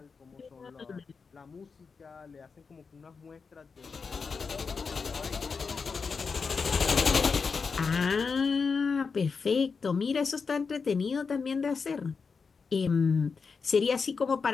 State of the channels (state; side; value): quieter; right; 5.2 dB